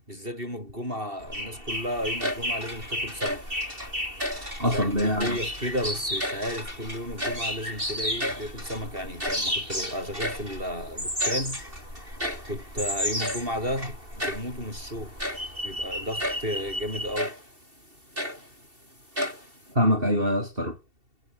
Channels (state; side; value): late; left; 2.7 ms